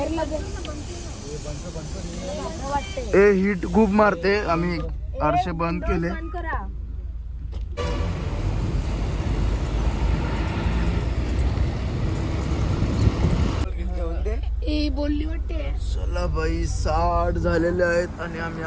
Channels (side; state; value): both; identical; correlation 1.00